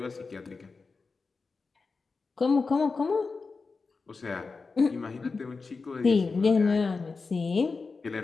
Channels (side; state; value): right; quieter; 4.4 dB